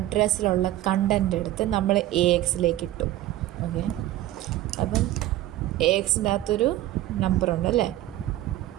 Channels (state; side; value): quieter; left; 14.7 dB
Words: കണ്ടൻ്റ് എടുത്ത് നമ്മൾ AXലേക്ക് ഇട്ടു. ഓക്കെ, അപ്പം AXൻ്റെ അകത്തൊരു നമ്പറുണ്ട് അല്ലേ.